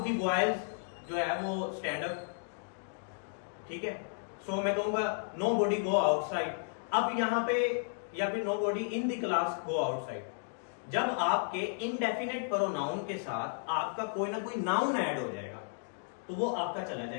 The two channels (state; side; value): silent; right; digital silence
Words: द बॉयज जो है वो स्टैंड अप, ठीक है। सो मैं कहूंगा नो बॉडी गो आउटसाइड। अब यहां पे, या फिर nobody in the class go outside. जब आपके इनडेफिनेट प्रोनाउन के साथ आपका कोई ना कोई नाउन ऐड हो जाएगा, तो वो आपका चला